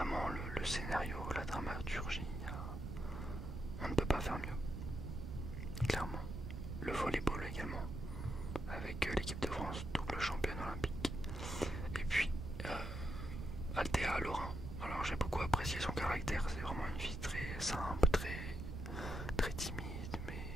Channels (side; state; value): right; noise; rumble, 6 dB below the sound